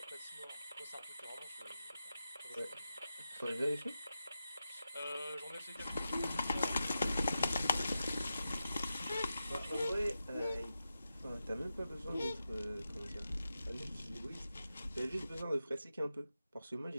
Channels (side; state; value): both; inverted; correlation -0.90